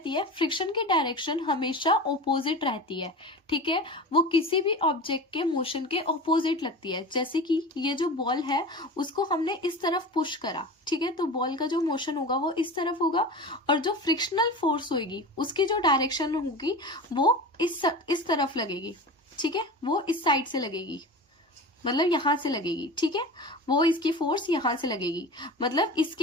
है? फ्रिक्शन की डायरेक्शन हमेशा ऑपोजिट रहती है. ठीक है. वो किसी भी ऑब्जेक्ट के मोशन के ऑपोजिट लगती है. जैसे कि ये जो बॉल है उसको हमने इस तरफ पुश करा. ठीक है. तो बॉल का जो मोशन होगा वो इस तरफ होगा और जो फ्रिक्शनल फोर्स होगी उसकी जो डायरेक्शन होगी वो इस तरफ लगेगी. ठीक है. वो इस साइड से लगेगी, मतलब यहां से लगेगी. ठीक है. वो इसकी फोर्स यहां से लगेगी, मतलब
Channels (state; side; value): normal; both; correlation 0.32